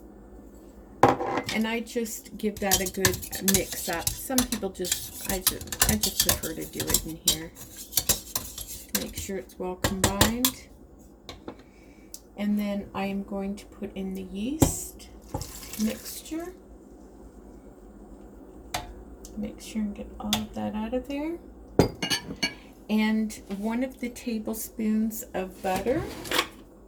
and I just give that a good mix up. Some people I just prefer to do it in here. Make sure it's well combined. And then I am going to put in the yeast mixture. Make sure and get all of that out of there. And 1 of the tablespoons of butter.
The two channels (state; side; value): identical; both; correlation 1.00